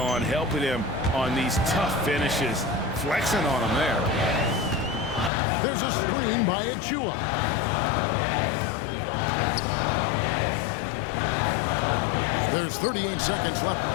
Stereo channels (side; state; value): right; drops out; at 5.3 s